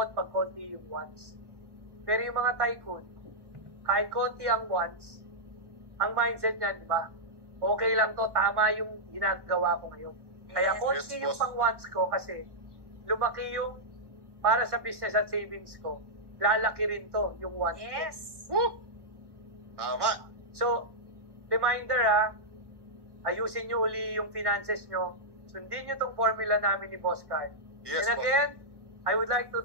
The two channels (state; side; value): late; left; 1.1 ms